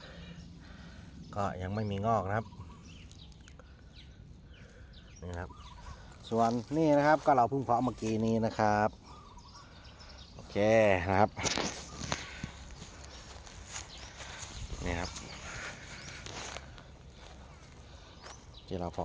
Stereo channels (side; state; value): both; identical; correlation 1.00